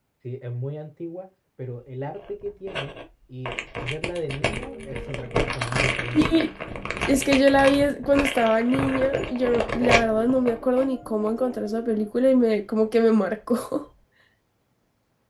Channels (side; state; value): both; identical; correlation 1.00